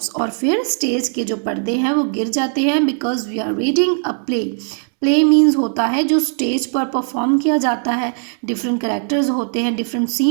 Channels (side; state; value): left; silent; 67 dB below the other